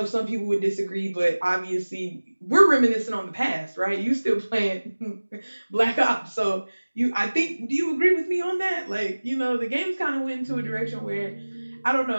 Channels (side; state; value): both; inverted; correlation -1.00